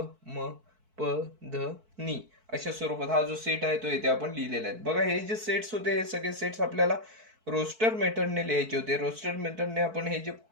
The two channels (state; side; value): late; left; 4.5 ms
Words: म प ध नी. अशा स्वरूपात हा जो सेट आहे तो इथे आपण लिहिलेला आहे. बघा हे जे सेट्स होते हे सगळे सेट्स आपल्याला रोस्टर मेथडने लिहायचे होते. रोस्टर मेथडने आपण हे जे